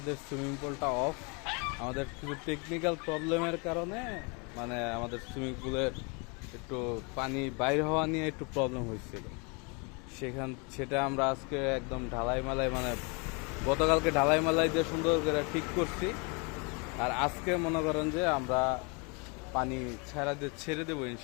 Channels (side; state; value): right; quieter; 32.4 dB